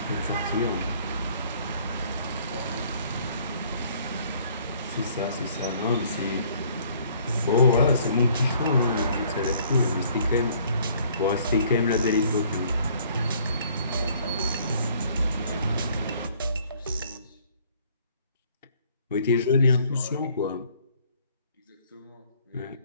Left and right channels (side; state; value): both; inverted; correlation -0.59